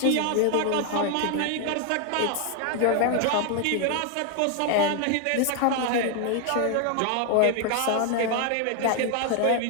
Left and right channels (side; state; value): both; different; correlation 0.00